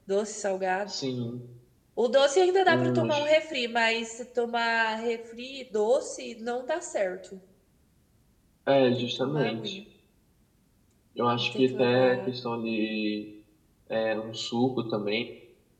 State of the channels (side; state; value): both; identical; correlation 1.00